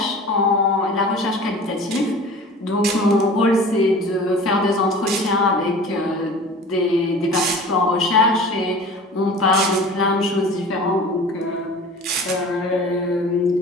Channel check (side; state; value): both; normal; correlation 0.40